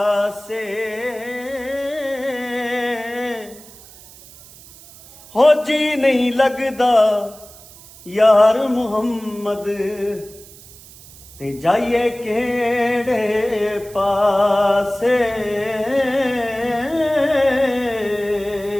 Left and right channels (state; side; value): noise; right; hiss, 20 dB below the sound